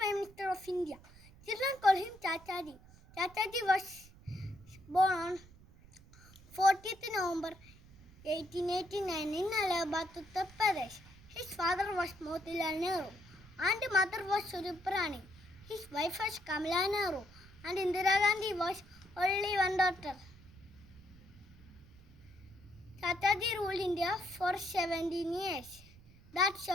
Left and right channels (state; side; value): noise; right; rumble, 22 dB below the sound